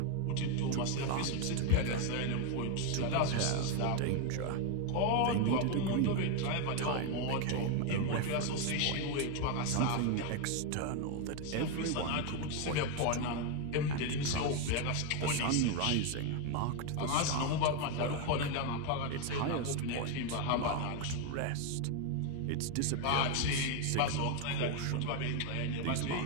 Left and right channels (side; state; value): both; different; correlation 0.01